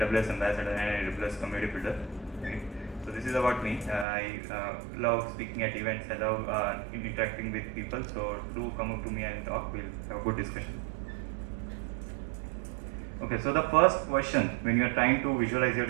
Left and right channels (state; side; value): drops out; left; at 4.0 s